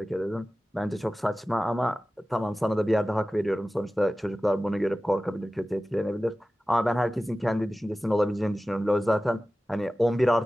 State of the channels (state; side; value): normal; both; correlation 0.96